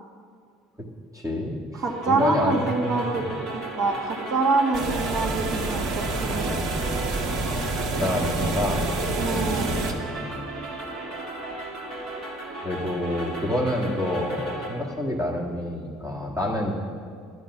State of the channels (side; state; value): both; normal; correlation 0.57